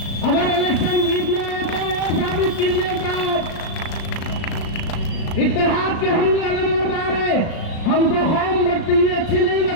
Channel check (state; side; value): late; right; 36 ms